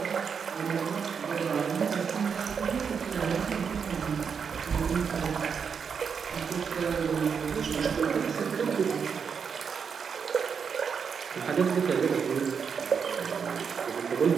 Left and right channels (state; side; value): quieter; left; 6.4 dB